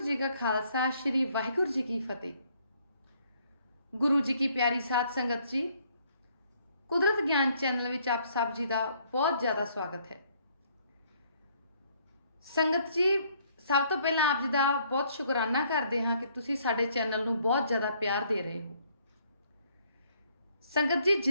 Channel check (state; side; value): inverted; both; correlation -0.66